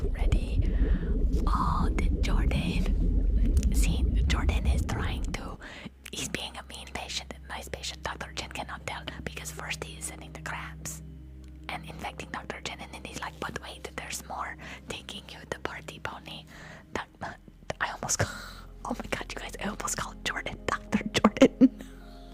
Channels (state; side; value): identical; both; correlation 1.00